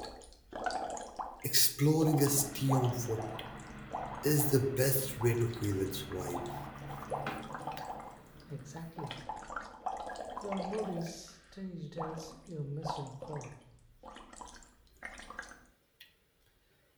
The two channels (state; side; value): identical; both; correlation 1.00